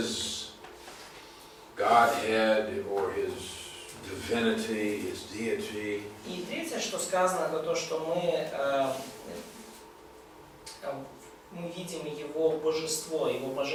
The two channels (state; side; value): identical; both; correlation 1.00